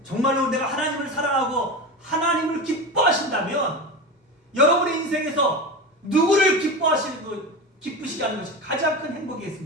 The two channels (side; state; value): both; normal; correlation 0.24